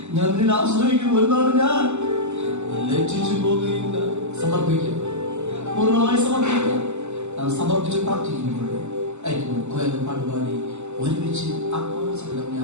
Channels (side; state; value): left; late; 0.83 ms